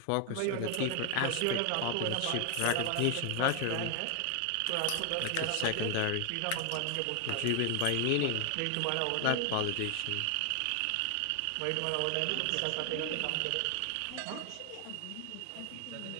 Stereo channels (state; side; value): different; both; correlation 0.01